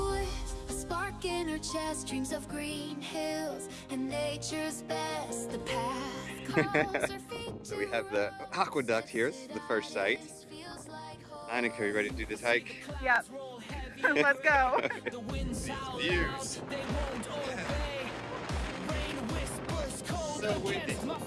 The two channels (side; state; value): both; identical; correlation 1.00